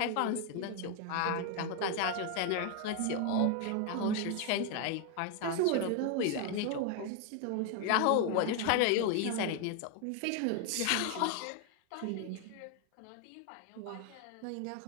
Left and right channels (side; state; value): both; different; correlation 0.01